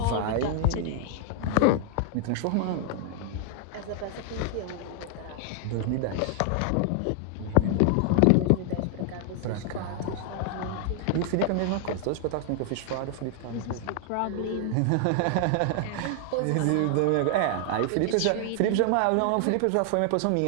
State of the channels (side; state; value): both; different; correlation 0.00